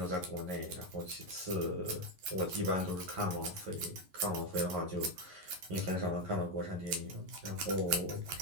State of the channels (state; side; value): late; left; 11 ms